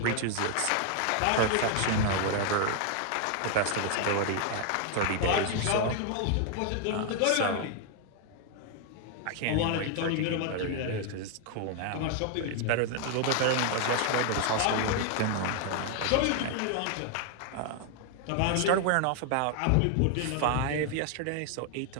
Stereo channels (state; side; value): different; both; correlation 0.00